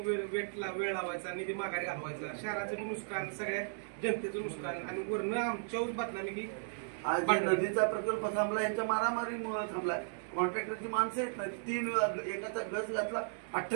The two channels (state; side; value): silent; left; digital silence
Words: लावायचा निधी माघारी घालवायचा. शहराचं नुकसान सगळ्या जनतेचं नुकसान आणि वरनं आमच्यावर बदनामी की आज नदीचा प्रकल्प थांबला यांच्या मारामारीमुळे थांबलाय. कॉन्ट्रॅक्टरची माणसं आहेत ना, 3 एकाचा गज घातला